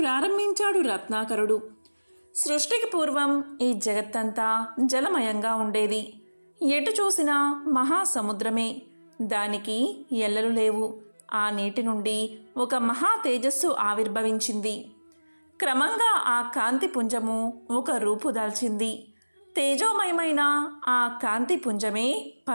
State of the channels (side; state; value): both; inverted; correlation -1.00